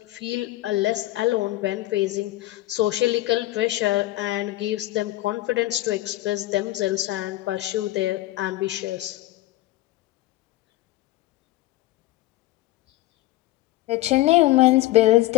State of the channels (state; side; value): quieter; right; 16.7 dB